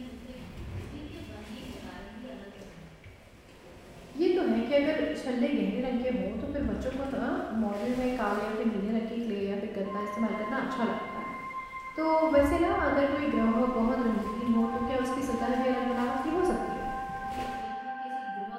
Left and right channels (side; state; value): both; identical; correlation 1.00